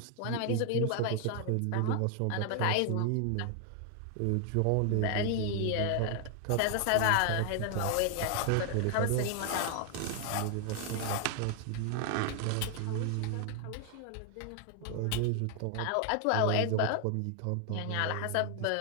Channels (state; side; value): different; both; correlation 0.00